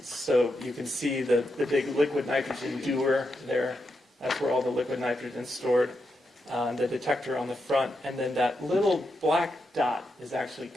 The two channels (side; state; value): both; normal; correlation 0.85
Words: So you can see the big liquid nitrogen dewar there. That's where all the liquid nitrogen is stored. The detector on the front, and then that little black dot is actually